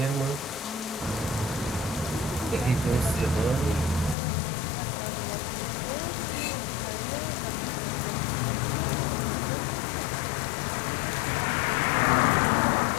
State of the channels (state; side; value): drops out; right; at 4.2 s